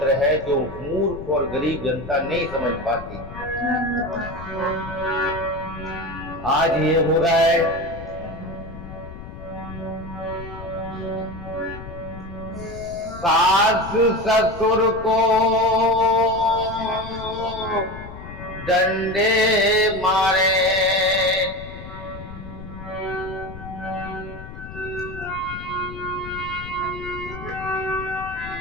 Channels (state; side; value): noise; left; rumble, 12 dB below the sound